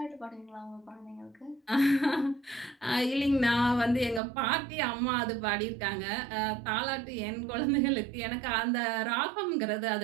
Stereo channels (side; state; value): left; drops out; at 4.2 s